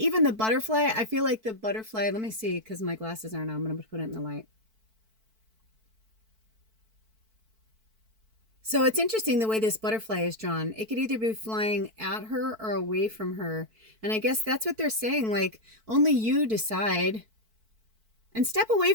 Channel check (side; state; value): left; late; 4.5 ms